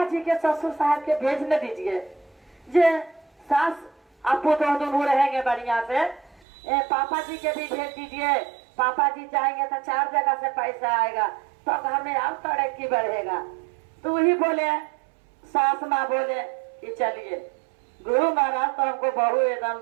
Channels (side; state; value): left; drops out; at 6.5 s